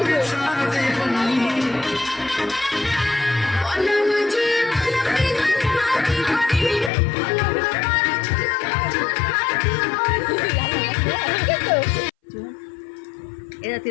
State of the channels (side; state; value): right; drops out; at 6.9 s